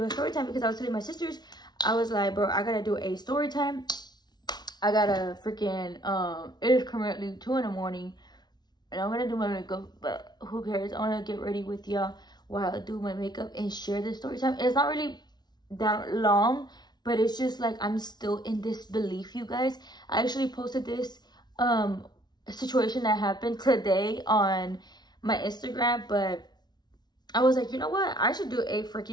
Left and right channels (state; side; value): late; right; 0.20 ms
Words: a story time because I was telling my sisters, I was like, bro, I gotta do a story time. I gotta freaking, it is currently 2 in the morning and I'm gonna do my makeup, but who cares? I wanna get ready with y'all while I do my makeup and share the story time. It's not really that long, but it's just like, I'm still in disbelief, you guys. I actually posted this situation that happened today on my Instagram, but I was like, you know what? I should do a